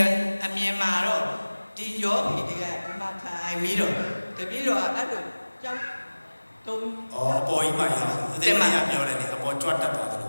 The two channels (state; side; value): inverted; both; correlation -1.00